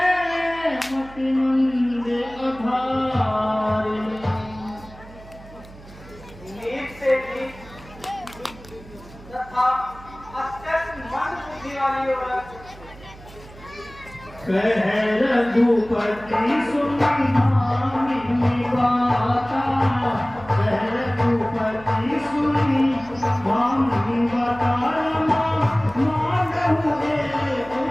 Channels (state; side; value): noise; right; hum, 19 dB below the sound